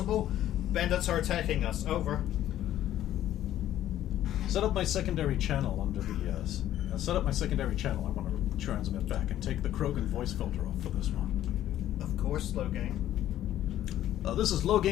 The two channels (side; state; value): right; quieter; 12.4 dB